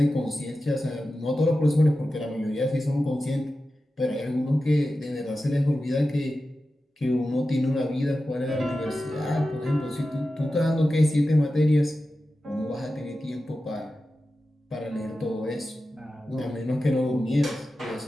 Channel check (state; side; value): normal; both; correlation 0.93